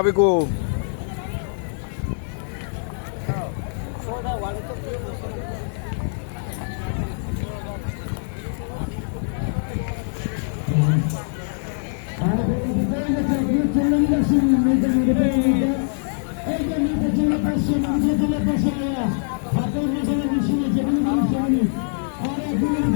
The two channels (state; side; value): silent; right; digital silence